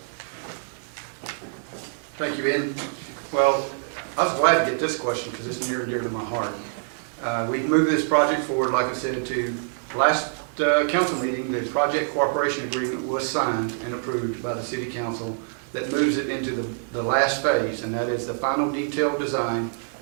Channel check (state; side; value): silent; left; 61 dB below the other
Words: Thank you, Ben. Well, I was glad to get this question because it's near and dear to my heart. We moved this project forward, like I said, to last council meeting. The project cooperation agreement was signed and approved by the city council that moves it into the last phase, and that is the final detailed design,